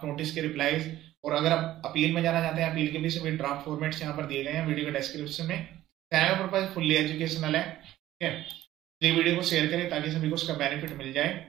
नोटिस के रिप्लाईज। और अगर आप अपील में जाना चाहते हैं, अपील के भी सभी ड्राफ्ट फॉर्मेट्स यहाँ पर दिए गए हैं वीडियो के डिस्क्रिप्शन में। चैनल का पर्पज फुल्ली एजुकेशनल है, ठीक है। ये वीडियो को शेयर करें ताकि सभी को उसका बेनिफिट मिल जाए।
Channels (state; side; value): quieter; left; 14.2 dB